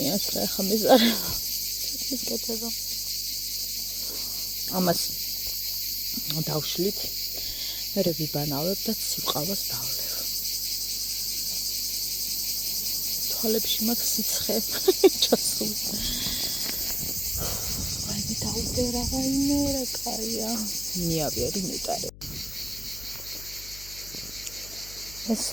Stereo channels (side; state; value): left; noise; hum, 17 dB below the sound